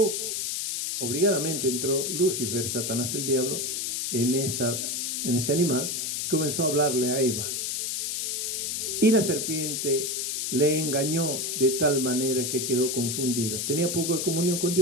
obligadamente entró Lucifer, Satanás el diablo, en ese animal y comenzó a hablarle a Eva. Y la serpiente le engañó de tal manera que quedó confundida. Tenía poco de comunión con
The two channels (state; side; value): noise; left; hiss, 1 dB below the sound